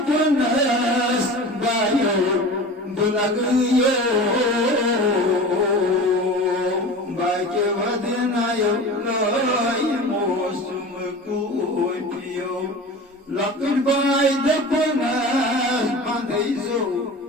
बायो बुलगयो बाके वदनायो लोय मौसम कुपियो लपट बाय दपनस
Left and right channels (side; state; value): both; normal; correlation 0.35